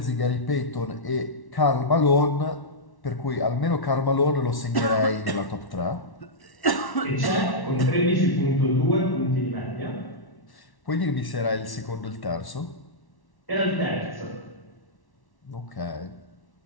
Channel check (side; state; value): right; late; 1.1 ms